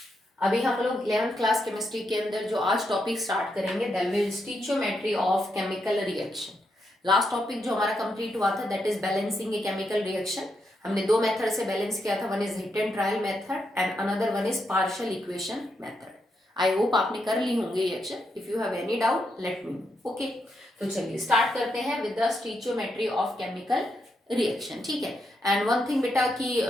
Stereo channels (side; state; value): both; normal; correlation 0.82